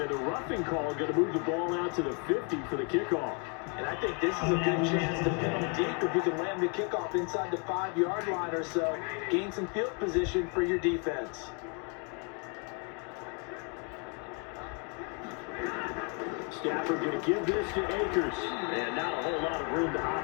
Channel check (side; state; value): right; quieter; 35.0 dB